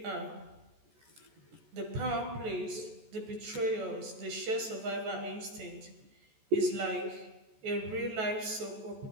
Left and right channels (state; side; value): late; left; 14 ms